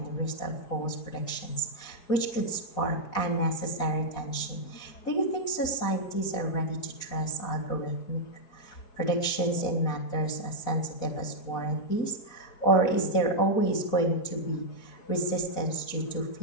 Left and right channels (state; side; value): late; right; 4.1 ms